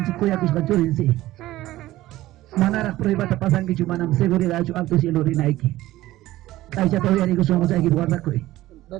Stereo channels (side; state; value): left; quieter; 16.1 dB